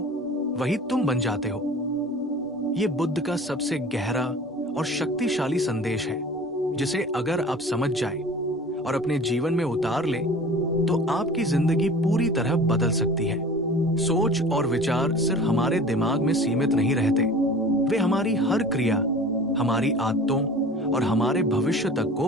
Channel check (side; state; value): both; normal; correlation 0.41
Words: वही तुम बन जाते हो। ये बुद्ध का सबसे गहरा और शक्तिशाली संदेश है, जिसे अगर आप समझ जाएं और अपने जीवन में उतार लें तो आपकी जिंदगी पूरी तरह बदल सकती है। सोच और विचार सिर्फ हमारे दिमाग में सीमित नहीं रहते, वे हमारी हर क्रिया, हमारी आदतों और हमारे भविष्य तक को